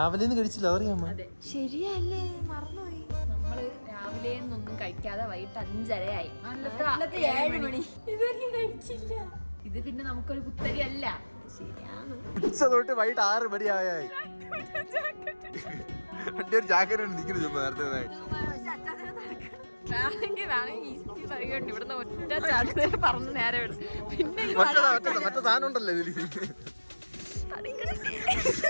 കഴിച്ചില്ല, അറിയാമോ? ശരിയല്ലേ, മറന്നുപോയി. നമ്മള് രാവിലെ ഒന്നും കഴിക്കാതെ വൈകിട്ട് 5:30 7 മണി ഇതൊന്നും കഴിച്ചില്ല. ഇത് പിന്നെ നമുക്കൊരു കുത്തരി അല്ല. ശരിയാണ്. ഉച്ച തൊട്ട് വൈകിട്ട് 6 മണിയായി. ഒരു ജാക്കറ്റ് നിൽക്കുന്നു നേരത്തെ. വേണമെങ്കിൽ പറയുന്നുണ്ട് ഇവിടുന്ന് ഒറ്റ ചാട്ടേ പറഞ്ഞ് നേരെ വിടും. പിന്നെ മറ്റേ സാധനം ഉണ്ടല്ലോ ഇതില്.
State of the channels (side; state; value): both; inverted; correlation -1.00